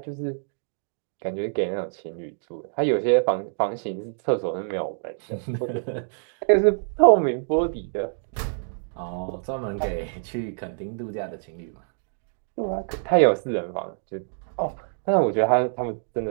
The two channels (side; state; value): left; silent; digital silence